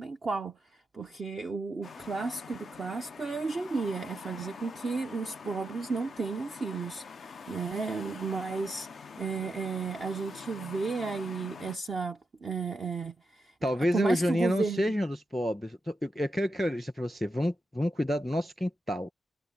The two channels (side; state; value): both; normal; correlation 0.86